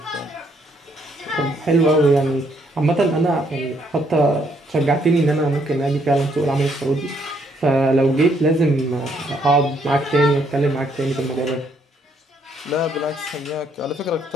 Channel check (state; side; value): normal; both; correlation 0.70